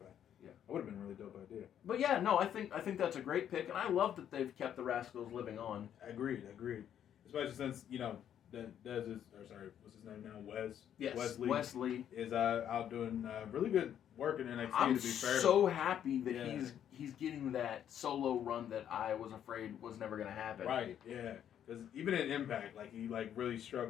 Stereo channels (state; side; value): quieter; right; 9.8 dB